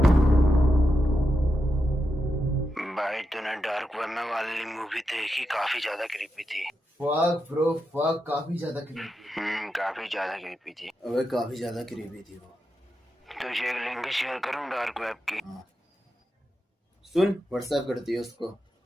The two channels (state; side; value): normal; both; correlation 0.87